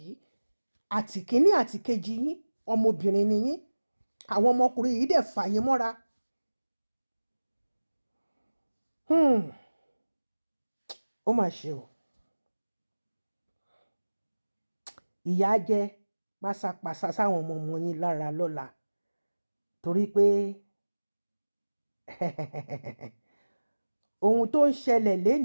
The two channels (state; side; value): inverted; both; correlation -1.00